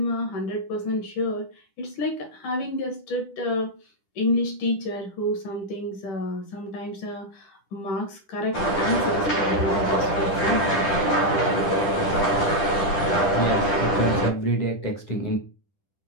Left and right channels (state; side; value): late; right; 10 ms